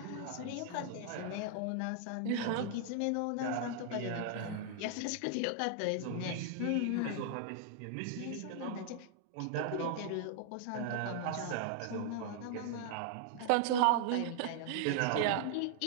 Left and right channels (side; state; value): both; different; correlation 0.00